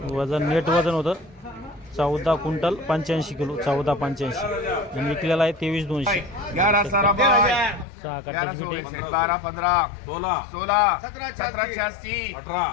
वजन नेट वजन होतं 14 क्विंटल 85 किलो 1485 आणि विकलेला आहे 23,200। 6 कट्ट्याची पिठे 12 15 16 16 17 17 86 18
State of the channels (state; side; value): drops out; right; at 7.9 s